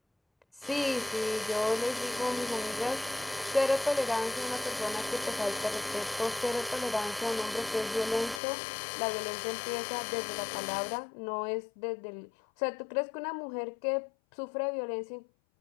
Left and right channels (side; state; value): right; drops out; at 8.4 s